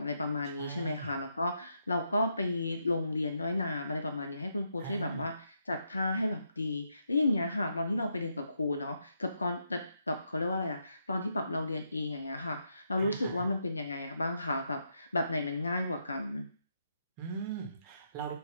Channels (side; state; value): both; inverted; correlation -0.80